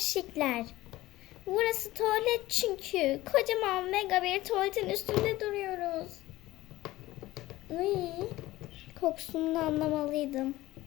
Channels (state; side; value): quieter; right; 17.3 dB